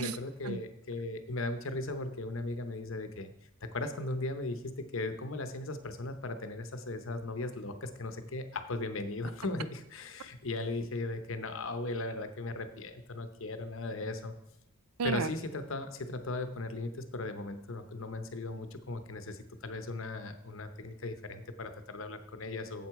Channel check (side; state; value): both; normal; correlation 0.26